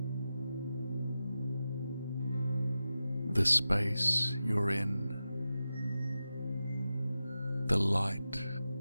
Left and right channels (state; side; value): inverted; both; correlation -0.92